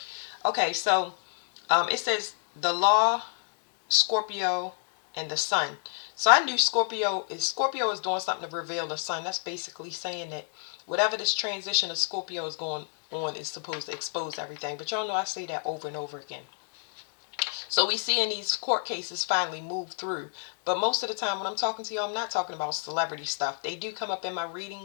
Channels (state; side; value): silent; right; 58 dB below the other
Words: Okay, so it says the law, Scorpio, and the sun. So I knew Scorpio is doing something to reveal the sun. That's basically saying that whatever this transition of Scorpio is going on is supposed to expose everything. But y'all know I say that over and over again. So we see in these court cases finally move through. But most of the time when I'm talking to you, I'm not talking about celebrity stuff. They do come up in my